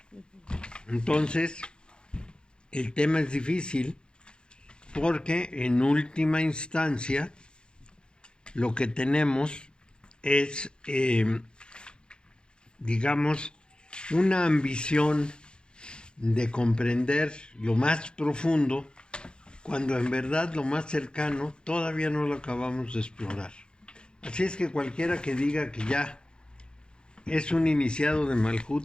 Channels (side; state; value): right; late; 0.050 ms